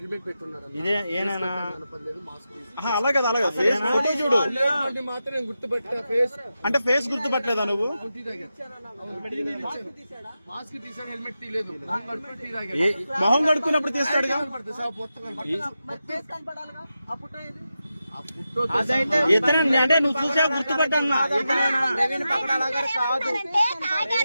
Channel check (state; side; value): inverted; both; correlation -0.90